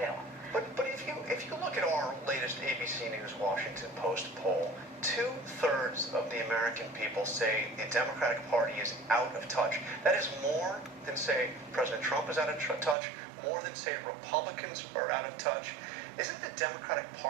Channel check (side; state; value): left; drops out; at 13.0 s